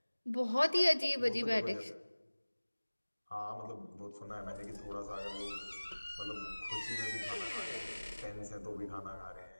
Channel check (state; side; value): inverted; both; correlation -1.00